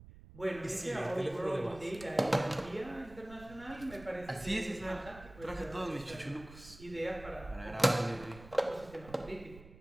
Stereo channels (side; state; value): right; noise; rumble, 17 dB below the sound